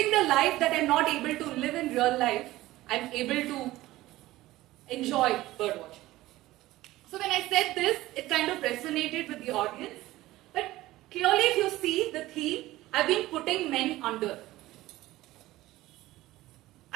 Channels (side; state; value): left; quieter; 17.0 dB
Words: the life that I'm not able to live in real life, I'm able to enjoy bird watching. So when I said this, it kind of resonated with the audience. But clearly if you see the theme, I've been putting men under.